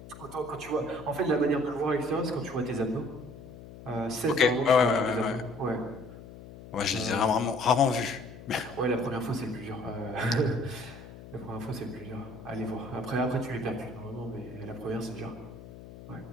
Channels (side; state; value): left; noise; hum, 16 dB below the sound